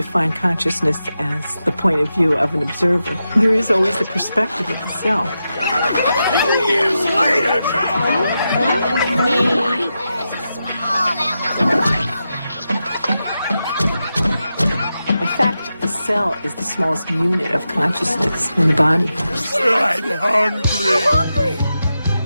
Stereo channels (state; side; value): inverted; both; correlation -0.89